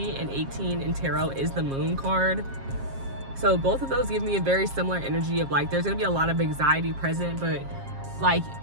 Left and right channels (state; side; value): late; left; 7.4 ms